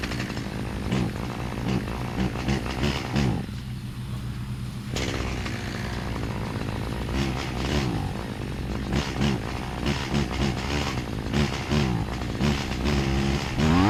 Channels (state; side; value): identical; both; correlation 1.00